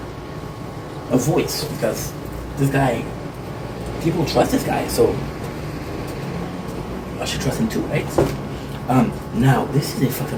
a voice, because this guy, people trust this guy, so I should trust him too, right? Now this is a fucked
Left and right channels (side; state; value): both; identical; correlation 1.00